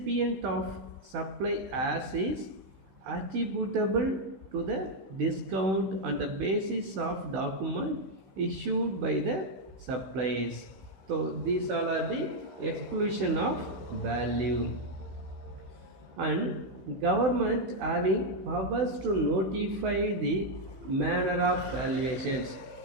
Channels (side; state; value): left; late; 16 ms